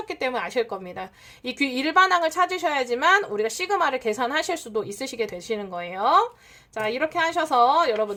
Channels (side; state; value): both; identical; correlation 1.00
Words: 때문에 아실 겁니다. 이 일반항을 찾으셔야지만 우리가 시그마를 계산하실 수도 있으시게 되시는 거예요. 자, 이렇게 하셔서